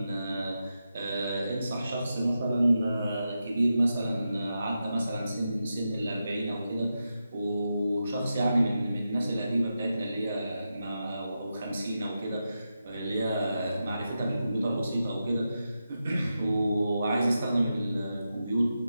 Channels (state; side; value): inverted; both; correlation -0.89